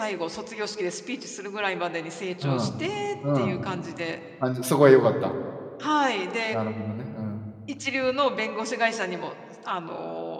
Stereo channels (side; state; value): both; identical; correlation 1.00